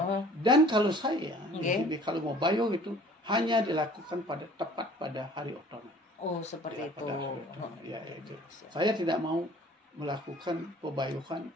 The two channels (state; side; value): normal; both; correlation 0.51